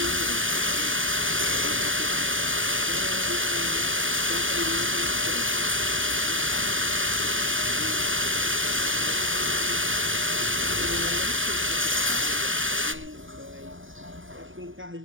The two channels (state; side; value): late; left; 0.57 ms